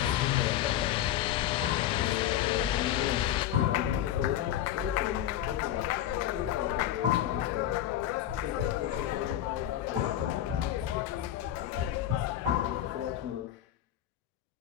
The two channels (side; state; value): right; quieter; 12.0 dB